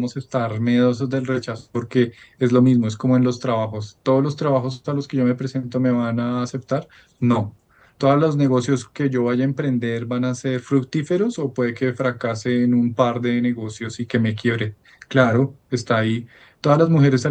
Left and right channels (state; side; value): identical; both; correlation 1.00